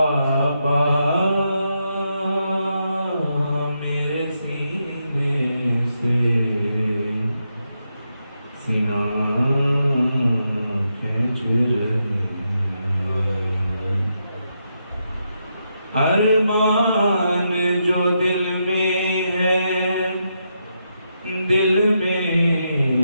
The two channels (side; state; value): both; inverted; correlation -0.82